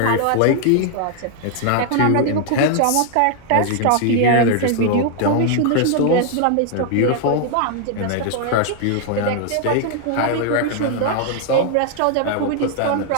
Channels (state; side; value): different; both; correlation 0.00